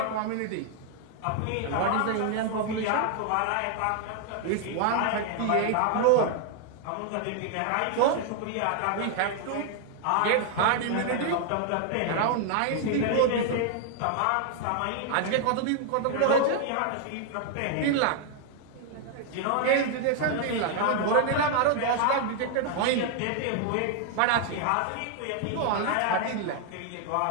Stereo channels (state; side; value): different; both; correlation 0.00